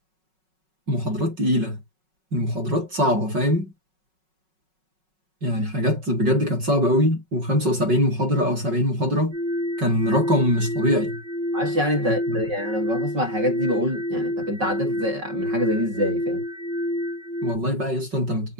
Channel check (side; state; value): left; late; 5.4 ms